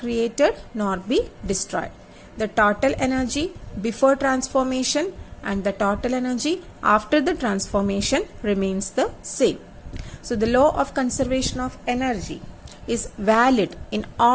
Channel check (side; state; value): both; identical; correlation 1.00